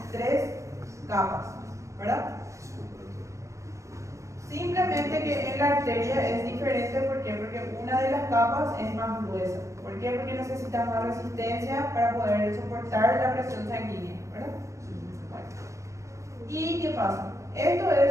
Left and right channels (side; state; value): left; late; 0.15 ms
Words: 3 capas, ¿verdad? Desculpa, doutor. Simplemente que en la arteria es diferente, ¿por qué? Porque una de las capas es más gruesa. ¿Por qué? Porque necesita más resistencia para poder soportar la presión sanguínea, ¿verdad? Bueno. ¿Y qué pasa? Esto